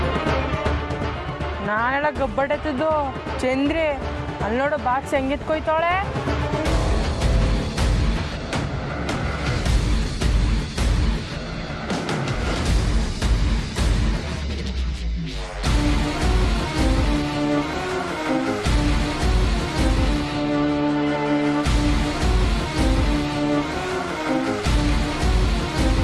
ನಾನೆಲ್ಲ ಗಬ್ಬಡತ್ತದು ಚಂದ್ರಿ ಅಲ್ಲಿ ನೋಡು ಬಾಕ್ಸ್ ಹೆಂಗಿತ್ಕೊಯ್ತಾಳೆ.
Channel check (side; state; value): both; identical; correlation 1.00